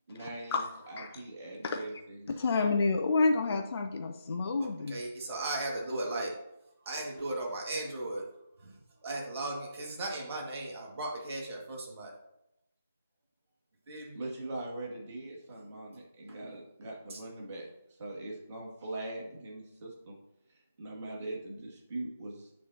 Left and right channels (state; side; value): inverted; both; correlation -0.77